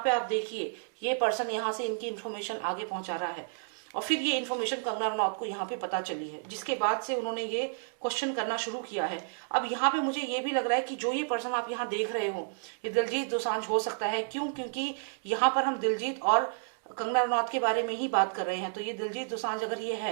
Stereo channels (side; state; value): left; silent; digital silence